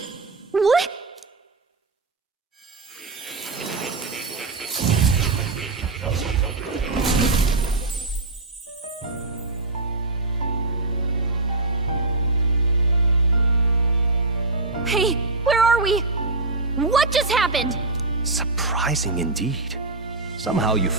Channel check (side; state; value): left; quieter; 3.3 dB